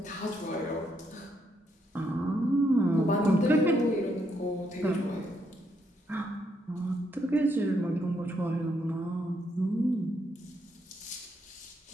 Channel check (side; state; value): both; normal; correlation 0.76